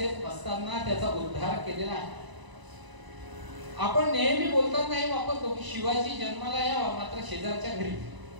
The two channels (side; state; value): left; late; 1.0 ms